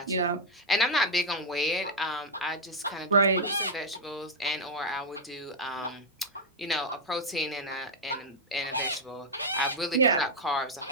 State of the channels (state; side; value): normal; both; correlation 0.00